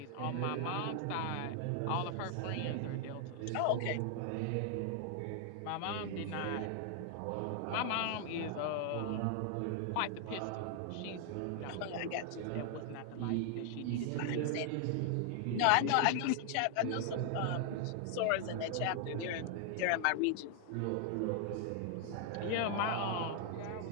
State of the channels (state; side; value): different; both; correlation 0.00